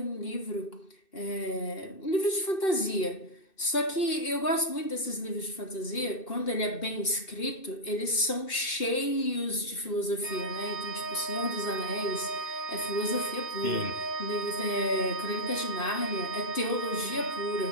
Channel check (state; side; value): late; right; 2.6 ms